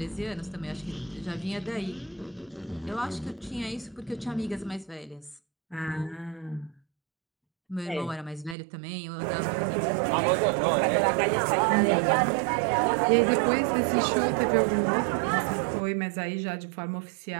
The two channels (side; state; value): left; drops out; at 8.6 s